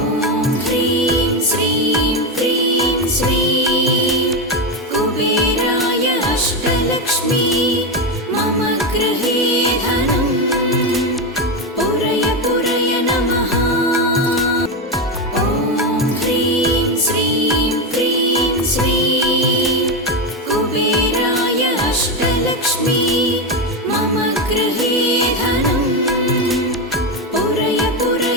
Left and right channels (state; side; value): normal; both; correlation 0.12